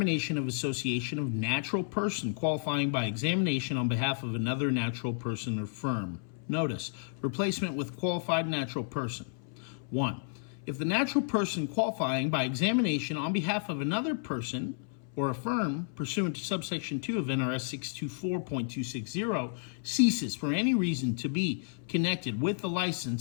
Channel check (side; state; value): right; silent; 57 dB below the other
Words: of association of natural person qualifying by examination on behalf of another natural person or firm. Notice, replacement with qualified natural person. 1. If the natural person qualifying by examination on behalf of another person or a firm pursuant to subsection 2 of NRS 624.260 ceases for any reason to be connected with the